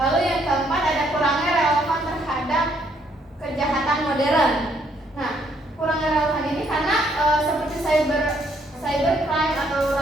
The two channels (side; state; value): both; normal; correlation 0.69